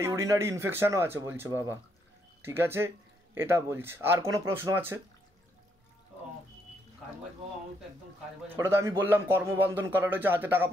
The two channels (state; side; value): normal; both; correlation 0.74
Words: ইউরিনারি ইনফেকশনও আছে বলছে বাবা। ঠিক আছে, এটা বলছে। আর কোনো প্রশ্ন আছে? কাজবাজ বাবা, আমার তো একদম কাজবাজ। ওটা তো আমি বললাম কর্মবন্ধন করা রয়েছে, হাতে টাকা